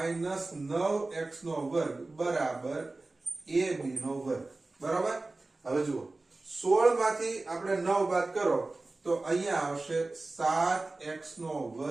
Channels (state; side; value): quieter; left; 3.2 dB